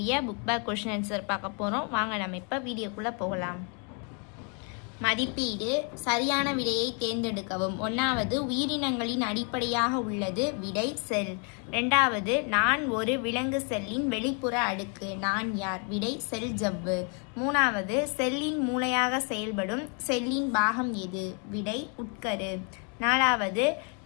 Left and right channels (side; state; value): right; quieter; 38.4 dB